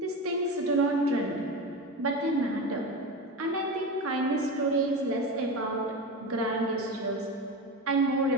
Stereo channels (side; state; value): both; normal; correlation 0.23